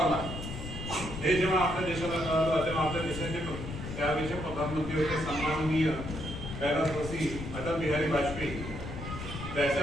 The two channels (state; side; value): noise; left; rumble, 8 dB below the sound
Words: हे जेव्हा आपल्या देशाला कळलं तेव्हा आपल्या देशाचे त्यावेळेचे प्रधानमंत्री होते सन्माननीय कैलासवासी अटल बिहारी वाजपेयी.